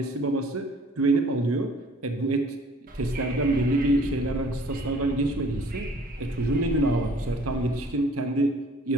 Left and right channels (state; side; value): normal; both; correlation 0.54